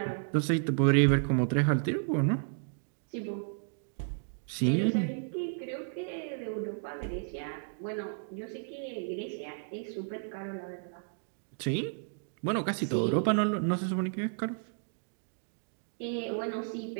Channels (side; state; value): left; silent; digital silence